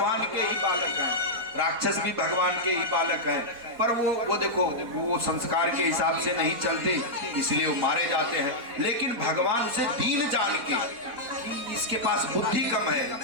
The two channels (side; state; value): left; late; 4.1 ms